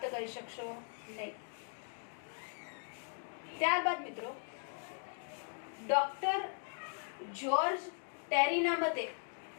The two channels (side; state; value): right; silent; 52 dB below the other